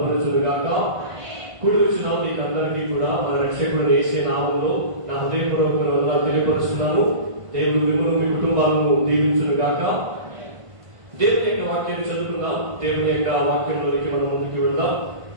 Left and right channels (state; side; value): late; left; 1.5 ms